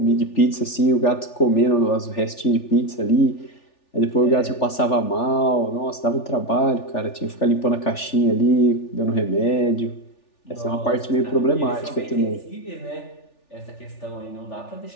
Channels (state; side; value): late; right; 3.4 ms